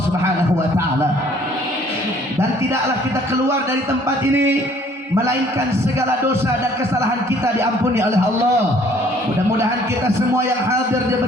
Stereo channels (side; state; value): both; normal; correlation 0.58